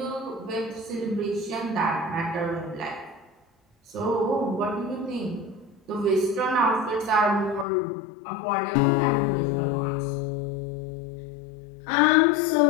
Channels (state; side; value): drops out; right; at 7.7 s